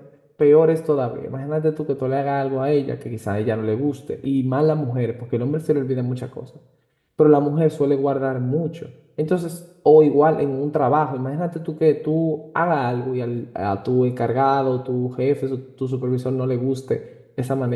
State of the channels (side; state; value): both; identical; correlation 1.00